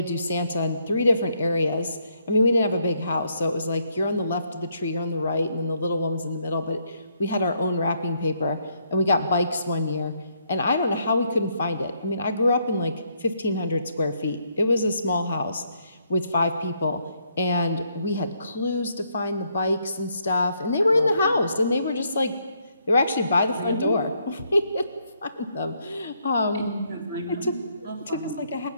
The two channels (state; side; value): inverted; both; correlation -0.74